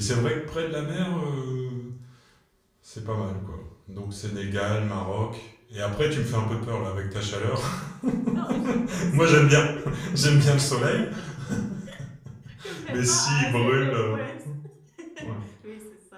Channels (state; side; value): identical; both; correlation 1.00